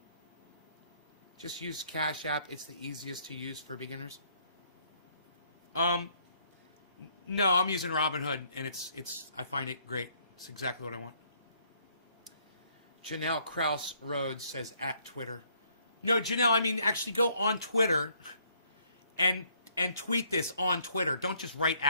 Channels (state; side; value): inverted; both; correlation -0.66